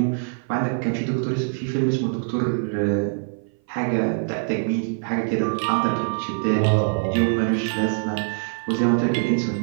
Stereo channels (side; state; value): left; silent; 56 dB below the other